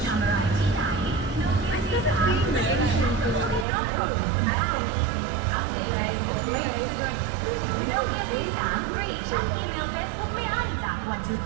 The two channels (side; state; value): left; drops out; at 3.7 s